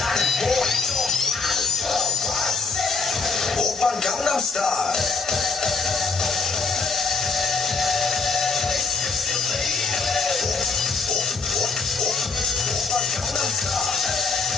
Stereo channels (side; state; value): right; quieter; 4.4 dB